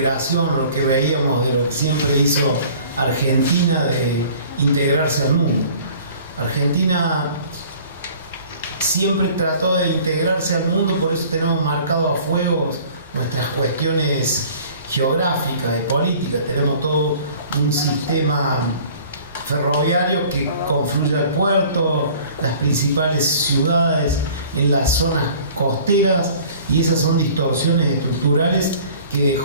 lo que veíamos de lo que siempre hizo Argentina de integrarse al mundo. Argentina siempre trató de integrarse al mundo, por eso tenemos marcado a fuego nuestras cuestiones geográficas y políticas. Tenemos todo un sistema ferroviario que confluye al puerto, las principales ciudades en las zonas costeras, y esas son distorsiones estructurales que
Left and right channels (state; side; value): inverted; both; correlation -0.49